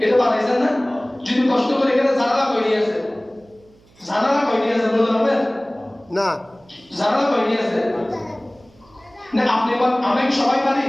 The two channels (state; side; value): noise; right; hum, 30 dB below the sound